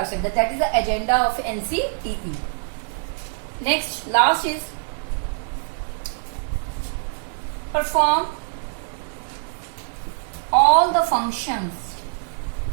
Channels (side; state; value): left; silent; digital silence